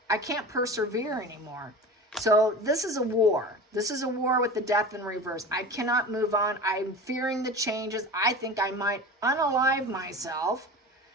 I can't persevere anymore. So this is a war. This is a war with the Death in reverse. I cannot move on. I'm fearing the changes. I think I might unalive myself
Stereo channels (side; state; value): both; normal; correlation 0.33